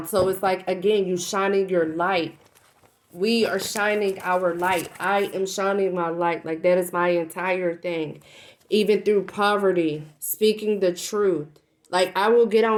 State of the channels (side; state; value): both; identical; correlation 1.00